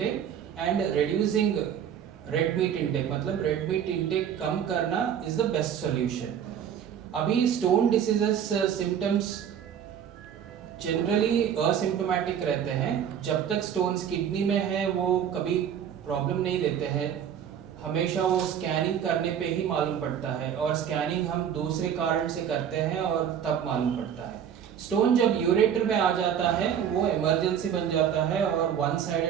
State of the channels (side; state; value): left; quieter; 8.8 dB